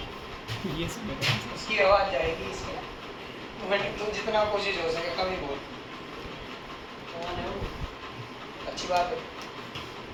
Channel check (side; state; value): both; identical; correlation 1.00